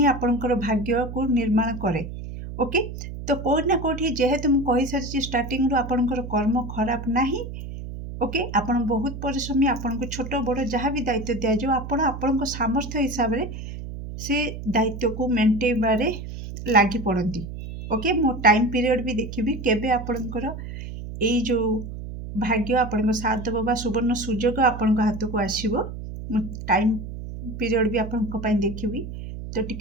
आपणकर भाग्य को निर्माण करे ओके तो कोठ ना कोठी जेहेतु मु कहि सारची स्टार्टिंग रो आपणकर कर्म खराब नाही ओके आपण बहुत परिश्रमी आपनको छोट बड़ जहाँ भी दायित्व दिया जो आपण आपणक सामर्थ्य हिसाब रे से दायित्व को मेंटेबारे लागी पड़ती ओके मो टाइम पीरियड भी देखिबी केबे आपणकर ए जो भाग्य आपणक साथ देबो बा सुवर्ण सुजोग आपणक हाथ को आसीबो मो टाइम पीरियड भी आपणक पई देखिबी तो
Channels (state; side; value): noise; right; hum, 9 dB below the sound